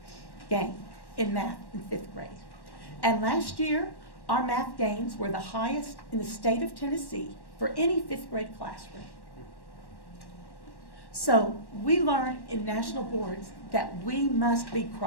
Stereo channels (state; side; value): late; right; 1.1 ms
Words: gain in math in 5th grade. And last year, our math gains were the highest in the state of Tennessee for any 5th grade classroom. So we learn in national boards that we must be